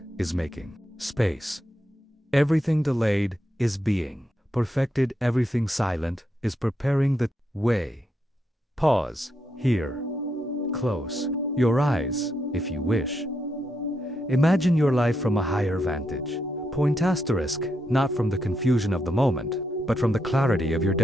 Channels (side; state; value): both; normal; correlation 0.81